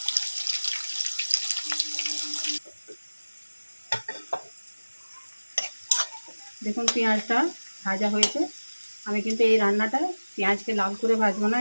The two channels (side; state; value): both; inverted; correlation -1.00